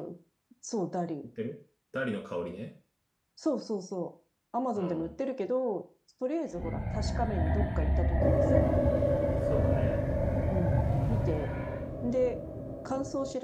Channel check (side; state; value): both; identical; correlation 1.00